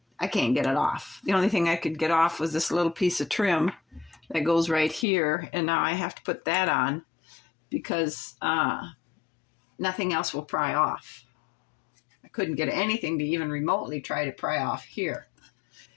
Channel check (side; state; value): right; drops out; at 5.1 s